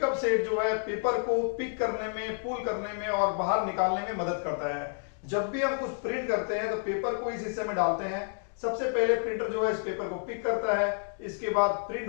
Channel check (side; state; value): right; silent; digital silence